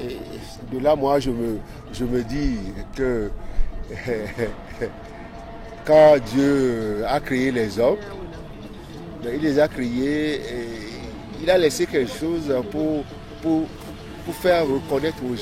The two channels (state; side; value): identical; both; correlation 1.00